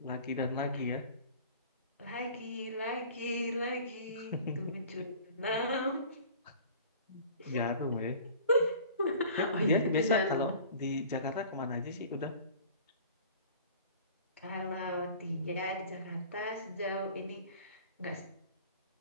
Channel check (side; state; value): both; inverted; correlation -0.45